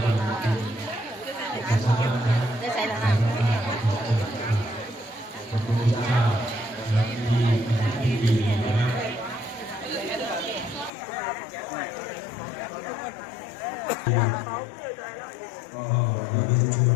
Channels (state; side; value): drops out; right; at 10.9 s